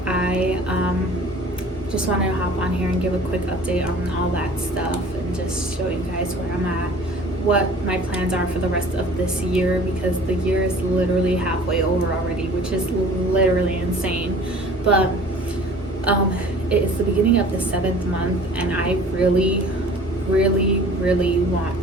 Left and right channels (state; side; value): normal; both; correlation 0.47